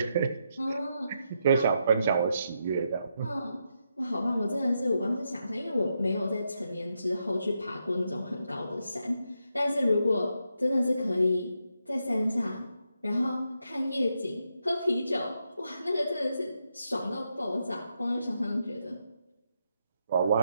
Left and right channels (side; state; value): both; inverted; correlation -0.83